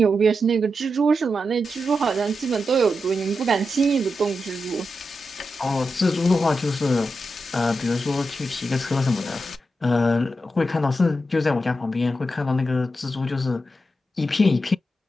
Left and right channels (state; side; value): normal; both; correlation 0.88